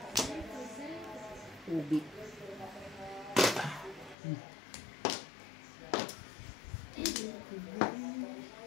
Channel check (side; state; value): right; drops out; at 4.2 s